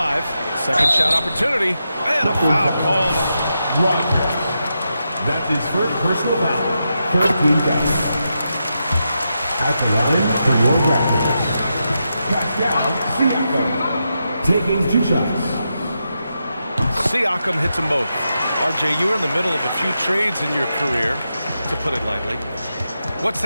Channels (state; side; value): inverted; both; correlation -0.86